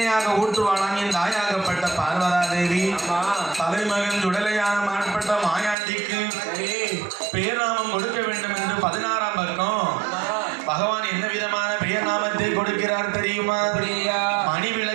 ஊற்றுவாளாம் என் தாயாகப்பட்ட பார்வதா தேவி. தலைமகன் சுடலையான மாற்பட்ட மாயாண்டிக்கு பேர்நாமம் கொடுக்க வேண்டும் என்று 16ஆம் பக்கம் பகவான் என்ன விதமான பெயர் நாமத்தை கொடுக்கிறார் தெரியுமா? மணி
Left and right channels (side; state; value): left; drops out; at 5.8 s